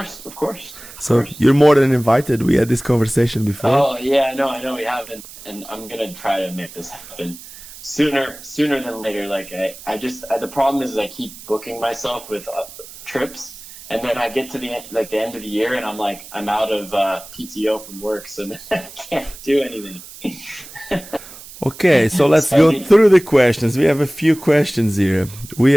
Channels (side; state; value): right; noise; hiss, 17 dB below the sound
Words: So you're more than invited. We had this conversation before. Oh yeah, no, I know we haven't, and I'm gonna try to make this happen sooner than later. Like I just the problem is I keep booking myself with trips, and then I get to the end of the year, and I'm out of PTO from work, so then I can't do anything. Okay, so let's go through the questions. We have a few questions here. We